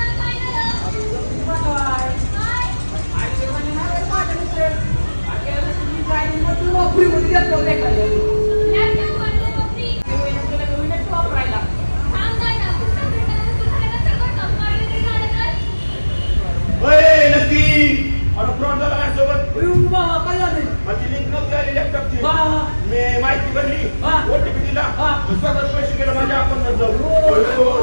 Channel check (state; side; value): inverted; both; correlation -1.00